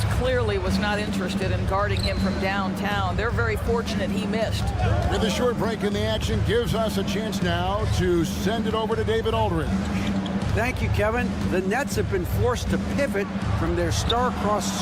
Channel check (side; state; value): both; identical; correlation 1.00